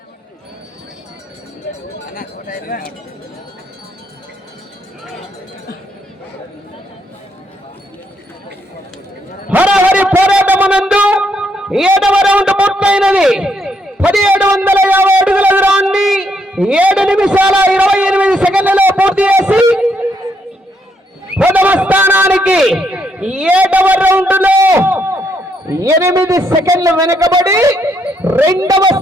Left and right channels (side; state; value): both; normal; correlation 0.75